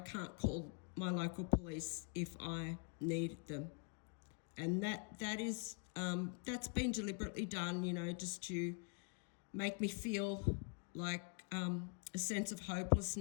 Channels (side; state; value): right; quieter; 37.6 dB